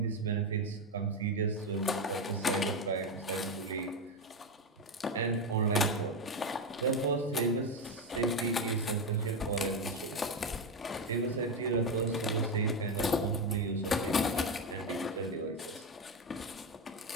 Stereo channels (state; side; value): normal; both; correlation 0.12